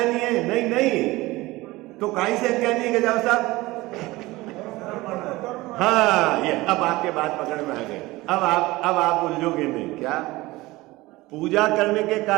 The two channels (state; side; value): quieter; left; 20.0 dB